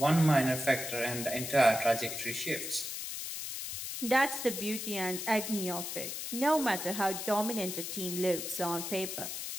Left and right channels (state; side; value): noise; left; hiss, 5 dB below the sound